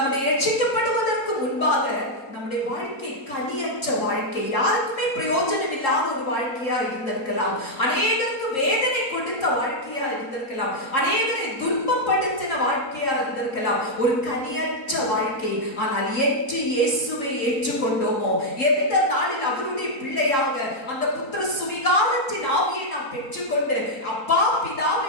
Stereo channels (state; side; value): late; right; 3.7 ms